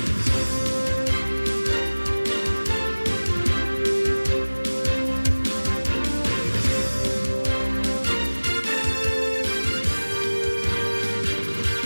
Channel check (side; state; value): both; inverted; correlation -1.00